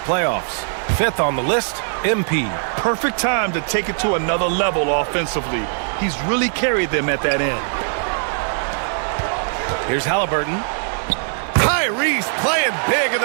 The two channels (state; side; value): silent; left; digital silence